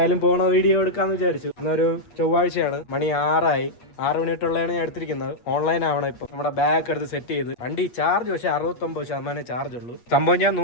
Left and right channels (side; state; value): right; late; 8.4 ms